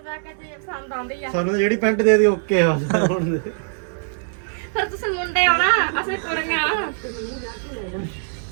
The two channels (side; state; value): left; silent; digital silence